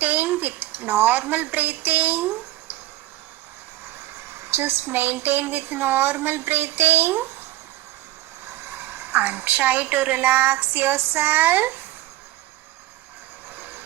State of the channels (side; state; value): left; quieter; 16.0 dB